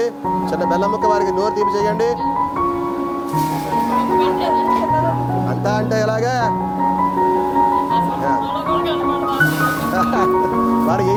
చిన్న బెల్లం ముక్క వారికి నోరు తీపి చేయండి. అంతా అంటే ఎలాగా వారు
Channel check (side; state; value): both; identical; correlation 1.00